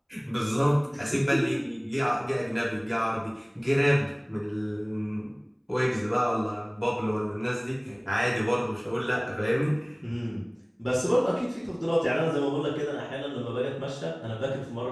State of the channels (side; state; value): both; identical; correlation 1.00